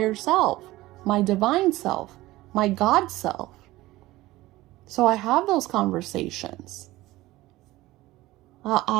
self, my divine self, my God self. So I have those conversations.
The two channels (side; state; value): left; quieter; 17.9 dB